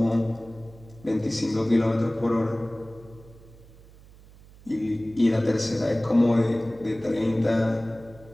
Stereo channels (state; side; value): noise; right; hum, 23 dB below the sound